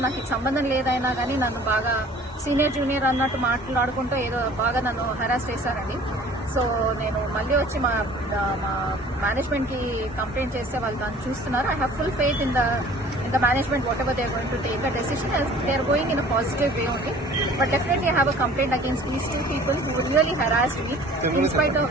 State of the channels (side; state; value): both; normal; correlation 0.49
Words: నాకు ఇది సంబంధం లేదైనా కానీ నన్ను బాగా సీనియర్ జూనియర్ అన్నట్టు మాట్లాడుకుంటూ ఏదో బాగా నన్ను హెరాస్ చేశారండి. సో నేను మళ్ళీ వచ్చి మా మేనేజ్మెంట్ కి కంప్లైంట్ చేస్తే వాళ్ళు దాన్ని చూస్తున్నారు. I have full faith in the management, whatever they are going to take a decision, as they are going in a positive way only. But definitely I have a complaint against these two people who really harassed me in spite of